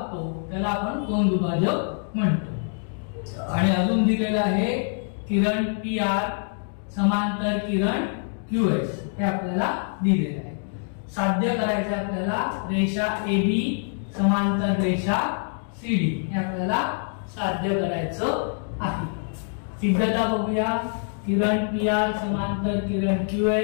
त्याला आपण कोन दुभाजक म्हणतो। आणि अजून दिलेला आहे किरण PR समांतर किरण QS, हे आपल्याला दिलेले आहे। साध्य करायचं आपल्याला रेषा AB समांतर रेषा CD, हे आपल्याला साध्य करायचं आहे। सिद्धता बघूया। किरण PR समांतर किरण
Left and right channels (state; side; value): silent; right; 62 dB below the other